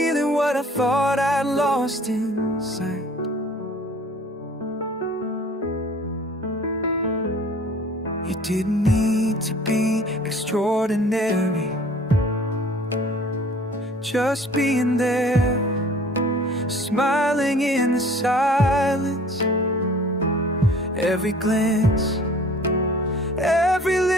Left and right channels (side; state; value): both; normal; correlation 0.50